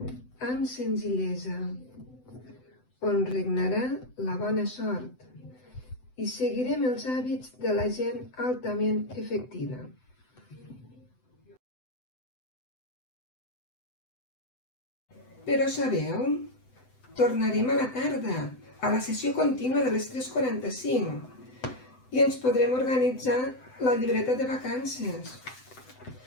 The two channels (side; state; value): right; late; 7.9 ms